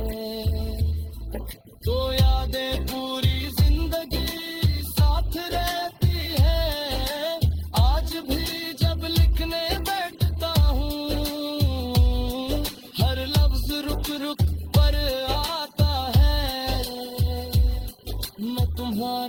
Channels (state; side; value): identical; both; correlation 1.00